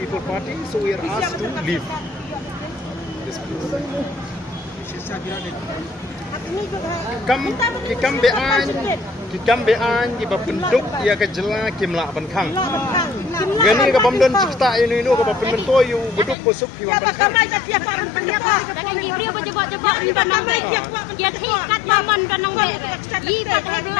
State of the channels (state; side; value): drops out; right; at 16.4 s